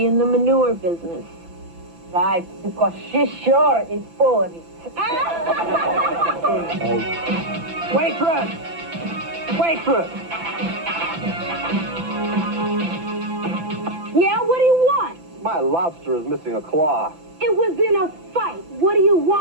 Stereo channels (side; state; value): left; late; 5.9 ms